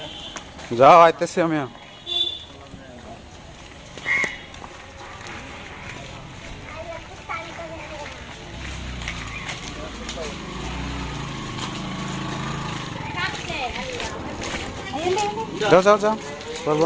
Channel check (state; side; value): identical; both; correlation 1.00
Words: যাও আইতেছি আমি যাও যাও যাও